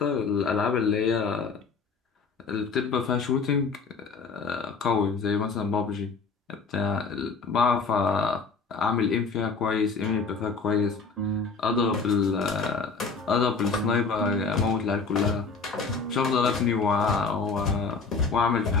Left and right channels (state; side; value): quieter; right; 4.8 dB